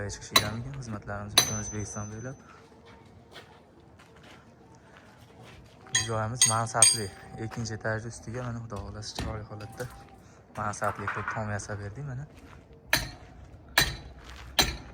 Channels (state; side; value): identical; both; correlation 1.00